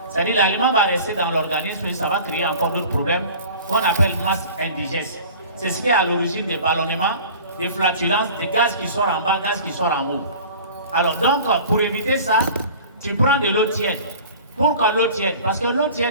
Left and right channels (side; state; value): both; inverted; correlation -0.42